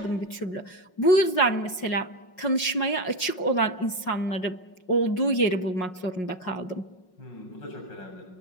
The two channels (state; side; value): late; right; 5.5 ms